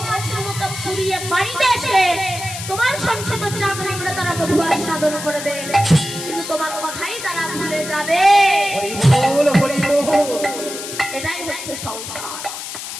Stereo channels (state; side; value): noise; left; hiss, 8 dB below the sound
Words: মতো পুড়িয়ে বাড়িতে এসে তোমার সংসার চাক নিংড়ে তারা মধু আস্বাদন করবে, কিন্তু তোমার কথাই তারা ভুলে যাবে। এটাই হচ্ছে সংসার।